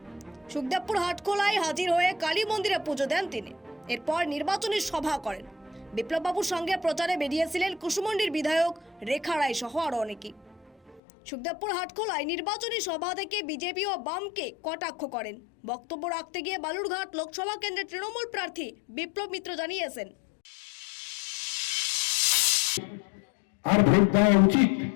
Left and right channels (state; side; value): drops out; right; at 11.0 s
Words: সুখদেবপুর হাটখোলায় হাজির হয়ে কালী মন্দিরে পুজো দেন তিনি। এরপর নির্বাচনী সভা করেন। বিপ্লববাবুর সঙ্গে প্রচারে বেরিয়েছিলেন কুসুমন্ডির বিধায়ক রেখা রায় সহ আরও অনেকেই। সুখদেবপুর হাটখোলায় নির্বাচনী সভা থেকে বিজেপি ও বামকে কটাক্ষ করেন। বক্তব্য রাখতে গিয়ে বালুরঘাট লোকসভা কেন্দ্রের তৃণমূল প্রার্থী বিপ্লব মিত্র জানিয়েছেন, আর ভোট দেওয়া উচিত।